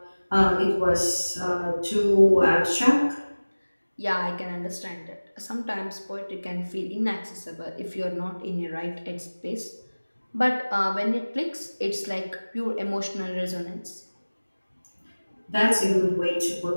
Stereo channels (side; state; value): both; inverted; correlation -1.00